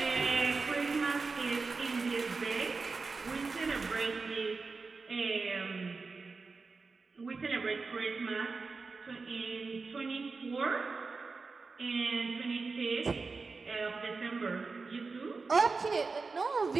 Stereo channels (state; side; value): quieter; left; 4.3 dB